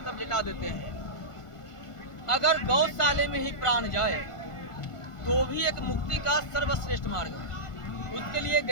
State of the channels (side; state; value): right; late; 1.5 ms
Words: तब लिटा देते हैं। अगर गौशाले में ही प्राण जाए तो भी एक मुक्ति का सर्वश्रेष्ठ मार्ग है, उसके लिए